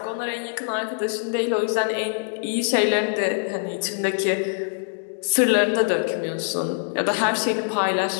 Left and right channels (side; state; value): right; silent; digital silence